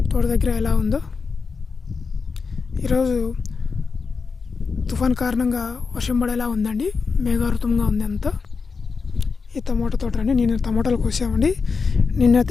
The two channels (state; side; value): quieter; right; 5.0 dB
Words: తోట దగ్గర ఎలా ఉందో. ఈరోజు తుఫాన్ కారణంగా వర్షం పడేలా ఉందండి. మేఘావృతంగా ఉంది అంతా. ఈ టమోటా తోట అండి. నేను టమోటాలు కోసామండి.